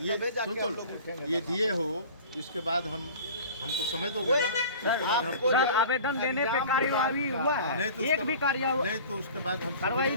ये तबे जाके सुन हम लो, लोग उठेंगे। ये दिए हो, इसके बाद हमको समझ दोगे ना, उसके बाद हम सर, आवेदन देने पे कार्यवाही हुआ नहीं है, तो एक भी कार्यवाही नहीं तो उसके बाद हम कार्रवाई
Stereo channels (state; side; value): inverted; both; correlation -0.42